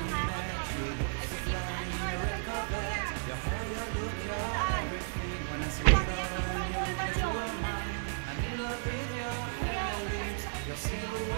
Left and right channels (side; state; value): left; silent; digital silence